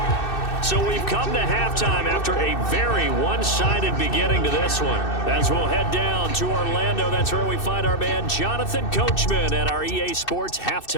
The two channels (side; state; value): right; late; 2.6 ms